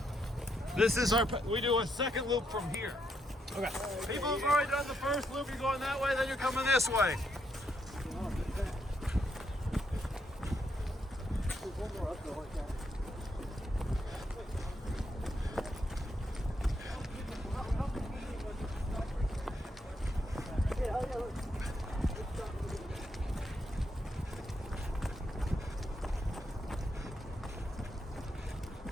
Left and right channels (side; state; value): both; normal; correlation 0.78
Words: This is our, we do a second loop from here. Okay. People who've already done the first loop, you're going that way, then you're coming this way. There's one more uphill like that.